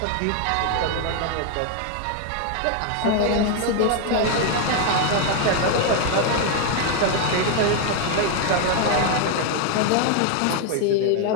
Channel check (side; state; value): both; different; correlation 0.01